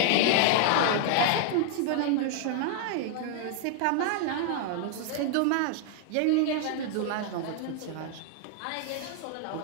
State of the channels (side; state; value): both; different; correlation 0.00